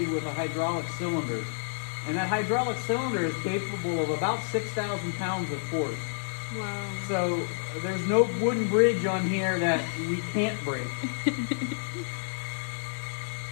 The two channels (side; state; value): right; silent; 58 dB below the other